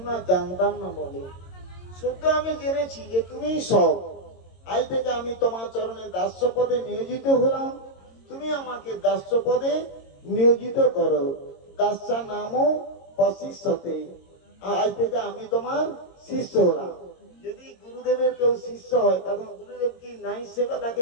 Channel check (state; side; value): late; right; 22 ms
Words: জানতাম না বলে। শুদ্ধ আমি জেনেছি যে তুমি সব। আজ থেকে আমি তোমার চরণে দাস্য পদে নিয়োজিত হলাম, তুমি আমাকে দাস্য পদে নিয়োজিত করো। দাস্যা নামও বশিষ্যতে, আজ থেকে আমি তোমার শিষ্য হলাম। যদি গুরুদেবের কেউ শিষ্য হয় তখন গুরুদেব কি নাই সেবা